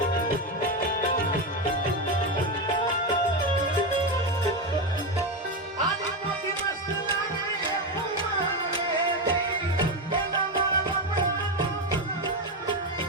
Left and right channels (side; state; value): both; normal; correlation 0.12